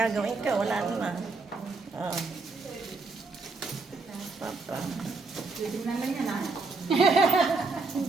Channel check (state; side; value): quieter; left; 3.9 dB